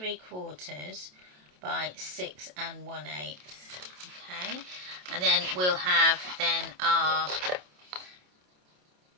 by 6 1/8. Okay, and then we'll have then our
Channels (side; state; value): left; late; 28 ms